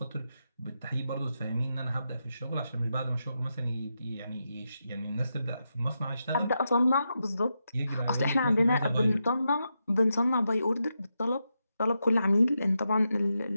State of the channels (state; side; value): inverted; both; correlation -0.86